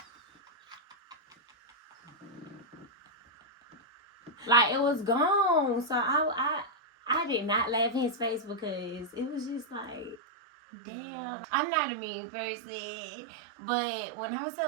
Like, it was gone. So, I did not laugh in his face because it was just like, damn. I'm not a mean person. But when I was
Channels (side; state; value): left; drops out; at 10.2 s